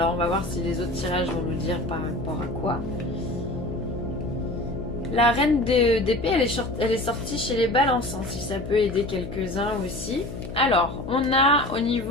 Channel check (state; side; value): noise; left; hum, 9 dB below the sound